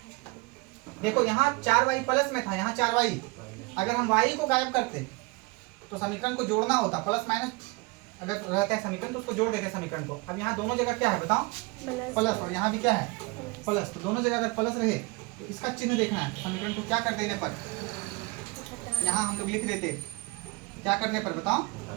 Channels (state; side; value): quieter; left; 24.9 dB